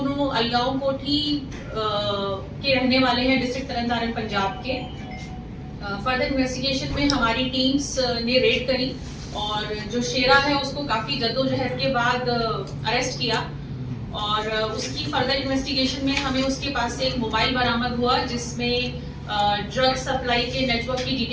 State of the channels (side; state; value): both; identical; correlation 1.00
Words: अलगांव कोठी के रहने वाले हैं, डिस्ट्रिक्ट तरनतारन पंजाब के। फर्दर इन्वेस्टिगेशन में हमारी टीम्स ने रेड करी और जो शेरा है उसको काफी जद्दोजहद के बाद अरेस्ट किया और उसकी फर्दर इन्वेस्टिगेशन में हमें उसके पास से एक मोबाइल बरामद हुआ जिसमें ड्रग सप्लाई के नेटवर्क की